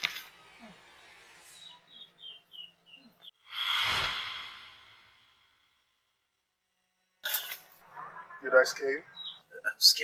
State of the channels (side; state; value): both; identical; correlation 1.00